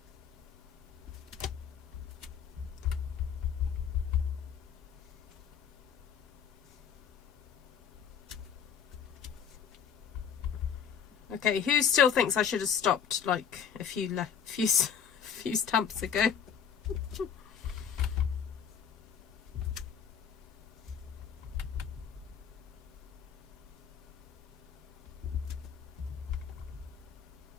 Okay, who still thinks I should have stopped like a few stamps ago?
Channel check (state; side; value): quieter; right; 7.7 dB